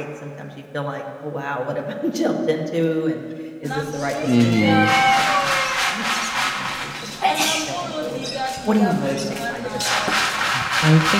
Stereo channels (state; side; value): identical; both; correlation 1.00